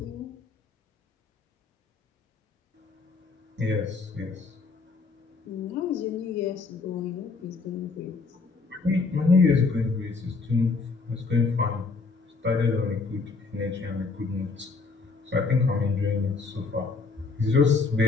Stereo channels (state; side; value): quieter; right; 4.3 dB